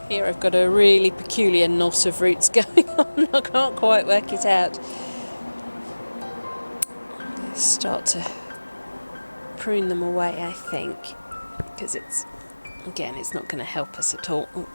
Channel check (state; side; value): inverted; both; correlation -1.00